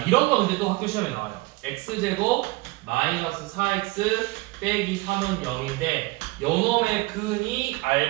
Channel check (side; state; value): left; quieter; 22.6 dB